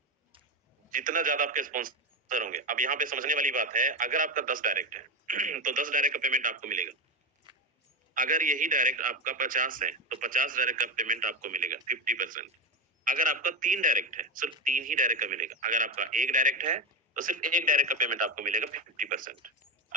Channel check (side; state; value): both; normal; correlation 0.15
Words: जितना ज्यादा आपके स्पॉन्सर होंगे। अब यहाँ पे समझने वाली बात है, अगर आपका 10 डायरेक्ट है तो 10 डायरेक्ट का पेमेंट आपको मिलेगा। अगर यही डायरेक्ट आपका 50 है तो 50 डायरेक्ट का पेमेंट आपको मिलेगा 50%। अगर आपका 3 डायरेक्ट है, सिर्फ 3 ही डायरेक्ट का मिलेगा। अगर आपका 1 डायरेक्ट है तो सिर्फ 1 डायरेक्ट का पेमेंट आपको मिलेगा 50%।